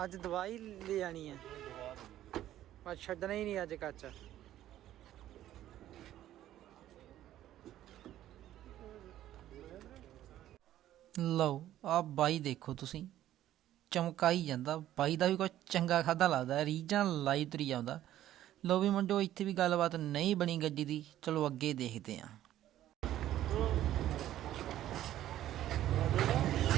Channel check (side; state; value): left; quieter; 12.8 dB